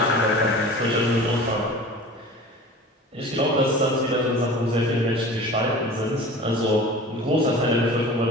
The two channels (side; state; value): both; normal; correlation 0.39